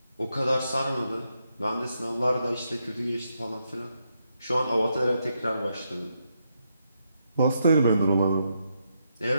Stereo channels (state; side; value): inverted; both; correlation -0.81